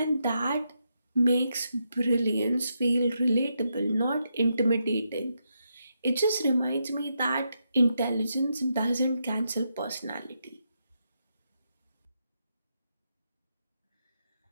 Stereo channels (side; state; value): both; inverted; correlation -0.82